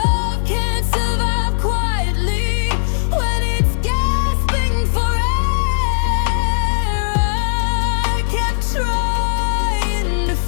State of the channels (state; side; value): silent; right; 60 dB below the other